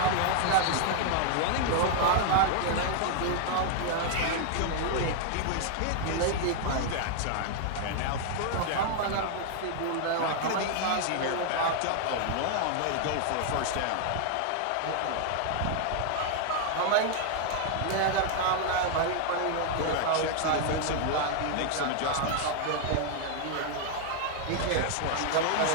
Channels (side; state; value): both; different; correlation 0.00